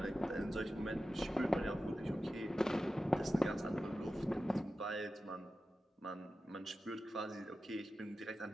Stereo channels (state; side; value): normal; both; correlation 0.93